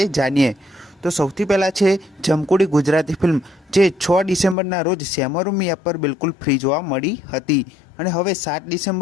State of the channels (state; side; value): drops out; right; at 4.5 s